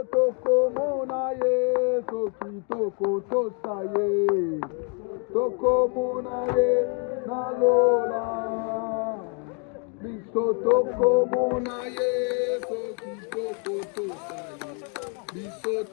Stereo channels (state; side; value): quieter; right; 38.9 dB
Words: tokomona ye, soki tokotosa ye, tokomona ye na lola. Biso tokomona ye, soki tokotosa ye, biso